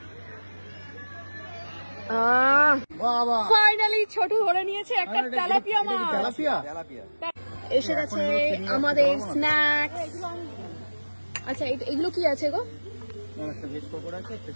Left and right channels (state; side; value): inverted; both; correlation -1.00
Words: ফাইনালি ছোট ধরে নিয়েছে একটা তেলাপিয়া মাছ। এসে গেছে আমাদের স্ন্যাক্স। আচ্ছা এগুলো কি আছে গো? ভেজ পকোড়া আছে, একটা